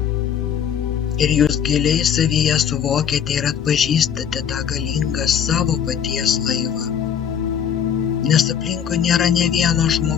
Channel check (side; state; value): right; quieter; 8.2 dB